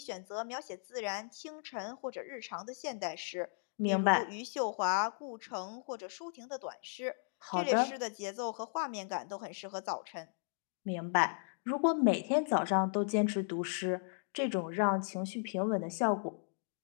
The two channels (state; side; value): silent; right; digital silence